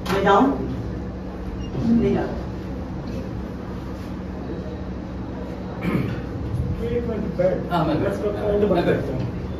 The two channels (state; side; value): identical; both; correlation 1.00